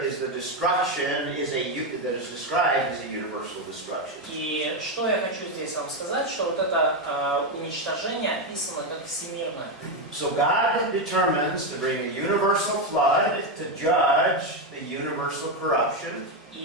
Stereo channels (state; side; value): normal; both; correlation 0.08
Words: is the destruction that is described as a universal destruction. И что я хочу здесь вам сказать, что вот это уничтожение описано как всемирное. So God determines to bring a universal flood to judge the universal corruption.